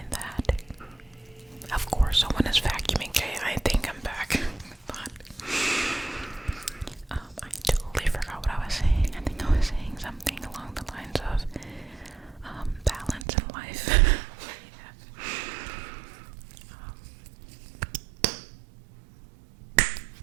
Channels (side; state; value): left; drops out; at 13.2 s